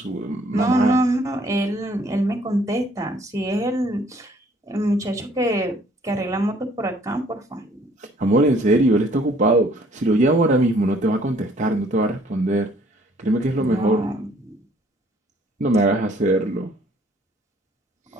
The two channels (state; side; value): normal; both; correlation 0.60